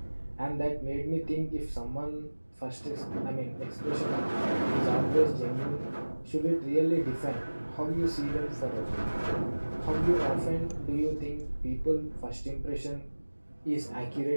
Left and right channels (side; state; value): both; inverted; correlation -1.00